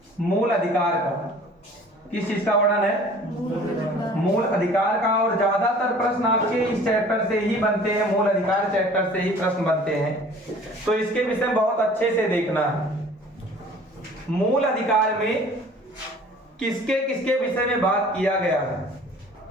मूल अधिकार का। किस चीज का वर्णन है? मूल अधिकार का। और ज्यादातर प्रश्न आपके इस चैप्टर से ही बनते हैं, मूल अधिकार चैप्टर से ही प्रश्न बनते हैं, तो इसके विषय में बहुत अच्छे से देखना है। मूल अधिकार में किसके किसके विषय में बात किया गया है?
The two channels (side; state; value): both; normal; correlation 0.49